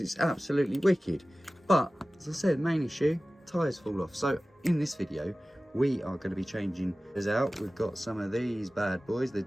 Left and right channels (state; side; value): normal; both; correlation 0.96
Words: it's absolutely wicked. But as I said, main issue, tyres fall off. So in this video we are going to be changing this out. We've got some of these bad boys, the